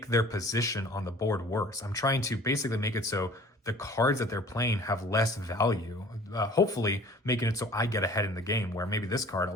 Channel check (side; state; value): both; normal; correlation 0.48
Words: their position on the board worse. I'm trying to basically make it so the cards that they're playing have less value, hopefully making it so I get ahead in the game, where maybe this card